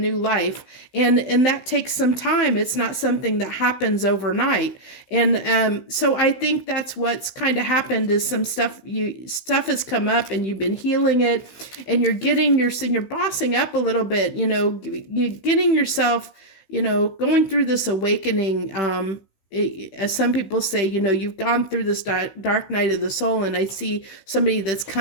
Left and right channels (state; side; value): late; right; 16 ms